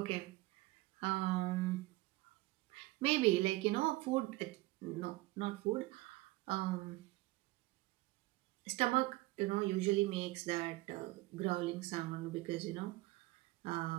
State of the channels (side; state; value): left; quieter; 19.9 dB